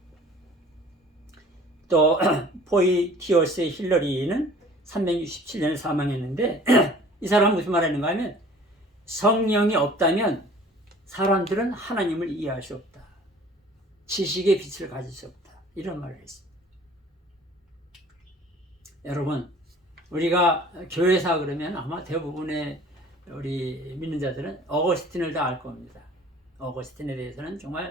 또 포이티어스 힐러리는 367년에 사망했는데 이 사람은 무슨 말하는가 하면 성령이 없다면 사람들은 하나님을 이해할 수 없다. 지식의 빛을 가질 수 없다. 이런 말을 했습니다. 여러분, 우리가 교회사 그러면 아마 대부분의 우리 믿는 자들은 어거스틴을 다 알 겁니다. 어거스틴에 대해서는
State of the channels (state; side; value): normal; both; correlation 0.49